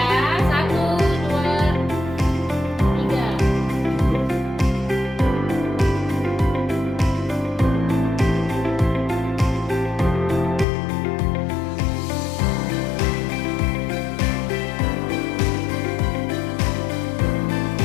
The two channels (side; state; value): right; drops out; at 10.7 s